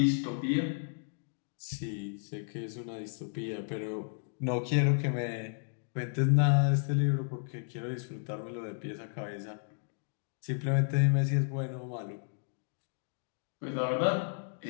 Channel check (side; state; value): right; silent; digital silence